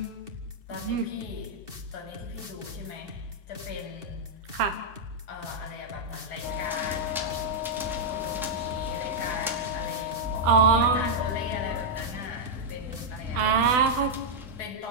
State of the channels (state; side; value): normal; both; correlation -0.04